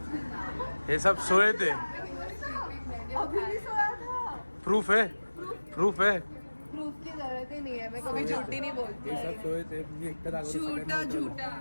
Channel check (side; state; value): both; inverted; correlation -1.00